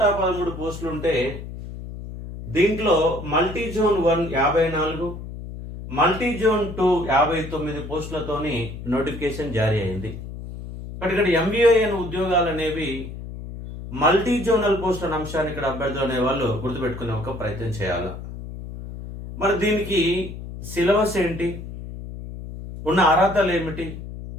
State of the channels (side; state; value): left; noise; hum, 10 dB below the sound